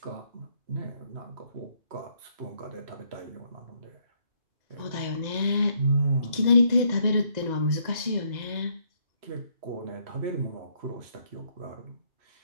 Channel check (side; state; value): left; late; 2.0 ms